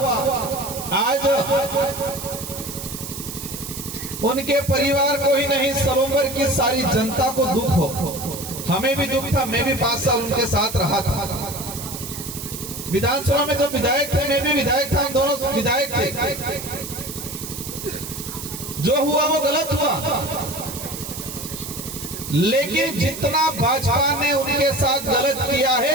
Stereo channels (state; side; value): noise; right; hiss, 9 dB below the sound